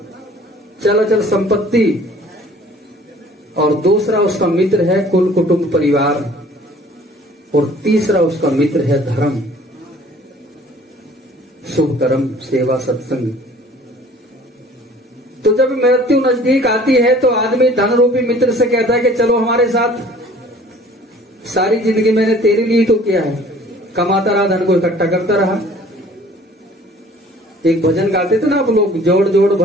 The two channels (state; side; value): normal; both; correlation 0.52